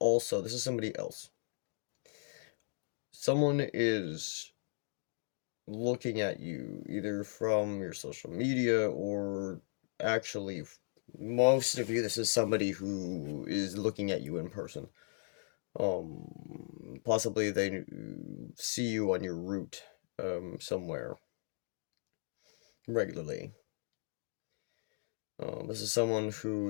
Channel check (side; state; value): right; silent; digital silence